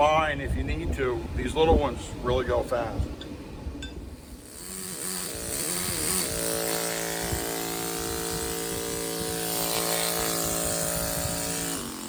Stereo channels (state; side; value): identical; both; correlation 1.00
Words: if you need to, these little ones really go fast.